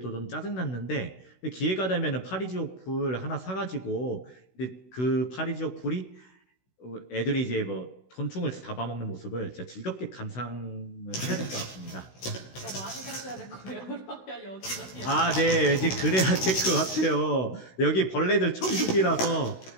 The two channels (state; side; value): late; right; 16 ms